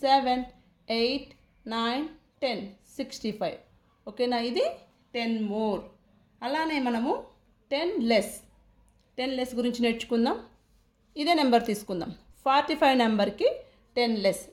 7 8 9 10 65. ఓకేనా? ఇది 10 మోర్. అలానే మనము 10 లెస్ గురించి నేర్చుకుందాం. ఇదే నెంబర్ తీసుకుందాం. 45 నెంబర్కి 10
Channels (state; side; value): identical; both; correlation 1.00